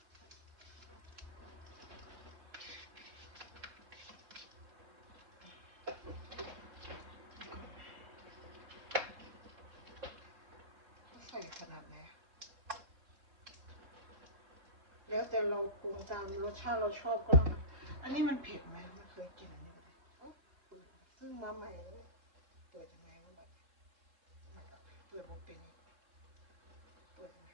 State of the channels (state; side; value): late; left; 3.7 ms